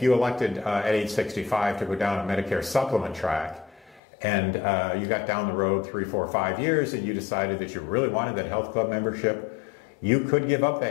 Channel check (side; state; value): right; drops out; at 4.0 s